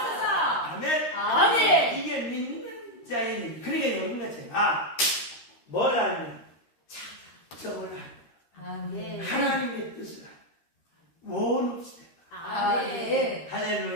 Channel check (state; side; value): late; right; 13 ms